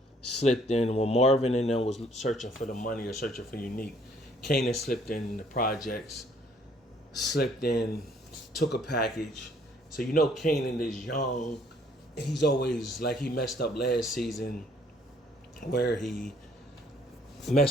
slipped in when Marvin and them was searching for the money or searching for Unique. Kanan slipped in the projects, slipped in, took a package. So you know Kanan is young. He's always like, he messed up last season where he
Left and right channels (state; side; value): normal; both; correlation 0.63